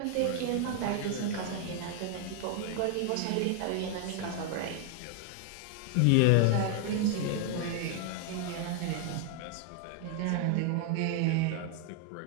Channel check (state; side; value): different; both; correlation 0.00